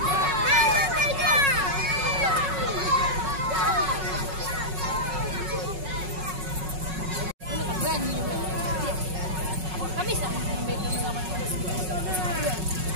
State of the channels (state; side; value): late; left; 5.4 ms